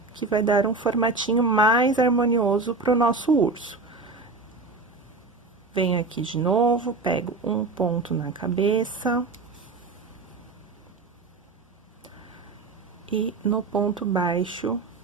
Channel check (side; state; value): left; quieter; 3.7 dB